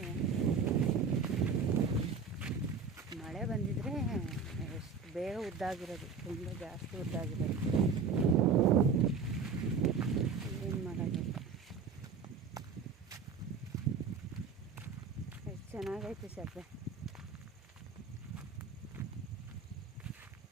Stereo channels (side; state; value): left; quieter; 5.3 dB